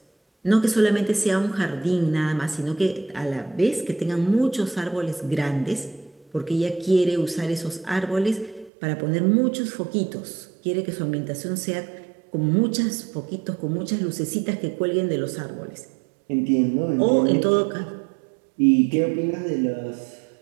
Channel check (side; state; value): left; drops out; at 8.7 s